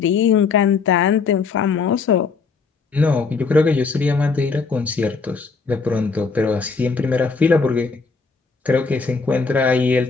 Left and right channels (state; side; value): quieter; right; 4.8 dB